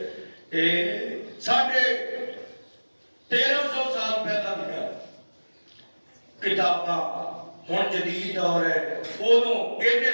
1350 سال پہلا لکھا کتاباں، ہن جدید دور ہے، ادوں ایڈے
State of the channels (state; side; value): inverted; both; correlation -1.00